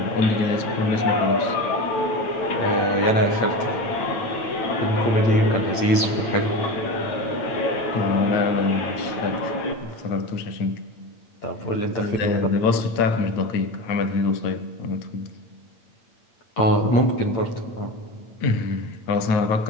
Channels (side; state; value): right; late; 8.8 ms